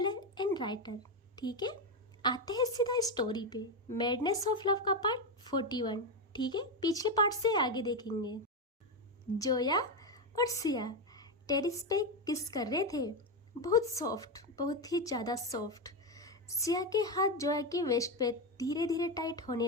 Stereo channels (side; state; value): both; normal; correlation 0.10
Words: and writer. ठीक है, आते हैं सीधा स्टोरी पे। मैडनेस ऑफ लव का पार्ट 41। ठीक है, पिछले पार्ट से आगे देखेंगे। जोया और सिया टेरिस पे किस कर रहे थे। बहुत सॉफ्ट, बहुत ही ज़्यादा सॉफ्ट। सिया के हाथ जोया की वेस्ट पे धीरे धीरे टाइट